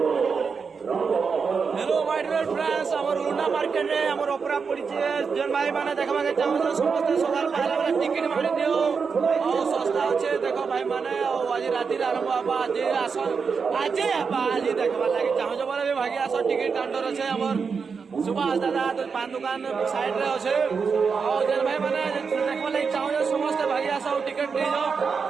मार्केट में आमर ऑपरा पड़ी जन भाई मैंने देखा के चाहो समस्त सकाल पहला टिकट मारी दियो और सस्ता अच्छे देखो भाई मैंने आज राति आरंभ हवा आज आज आज देखा लगे चाहो बोले भागी आस टिकट काउंटर अच्छे आमर सुभाष दादा पान दुकान साइड रे अच्छे और जन भाई मैंने देखा लगे चाहो समस्त भागी आस टिकट नहीं जाओ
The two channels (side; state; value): left; quieter; 5.5 dB